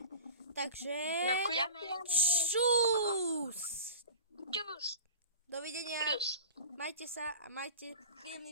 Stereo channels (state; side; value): inverted; both; correlation -0.36